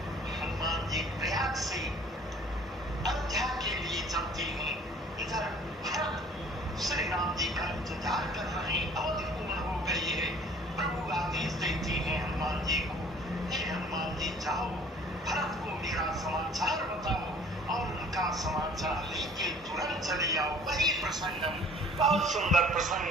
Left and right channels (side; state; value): both; normal; correlation 0.52